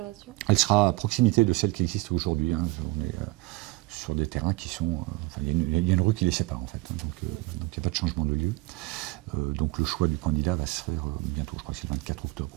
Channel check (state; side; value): quieter; left; 21.5 dB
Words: ? Elle sera à proximité de celle qui existe aujourd'hui. Hein. On est sur des terrains qui sont... il y a une rue qui les sépare en fait. Hein, donc il n'y a pas de changement de lieu. Donc le choix du candidat va se faire bientôt, je crois que c'est le 24 octobre,